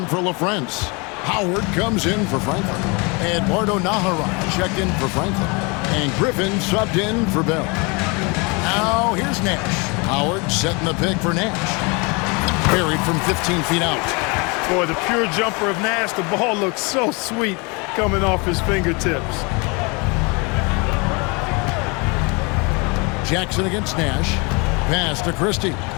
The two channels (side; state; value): right; quieter; 29.6 dB